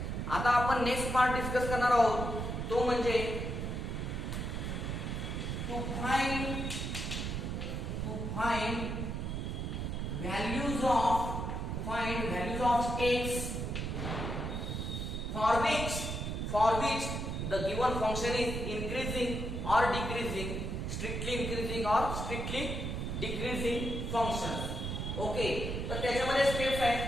आता आपण नेक्स्ट पार्ट डिस्कस करणार आहोत, तो म्हणजे to find values of x for which the given function is increasing or decreasing, strictly increasing or strictly decreasing function. Okay, तर त्याच्यामध्ये स्टेप्स आहेत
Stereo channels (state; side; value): noise; right; rumble, 3 dB below the sound